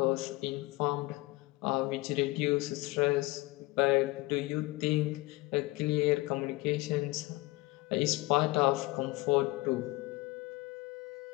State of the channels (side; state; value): right; quieter; 21.3 dB